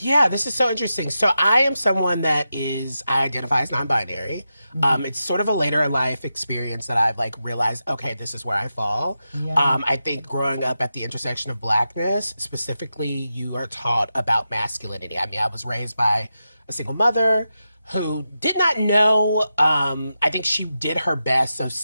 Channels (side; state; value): both; inverted; correlation -0.89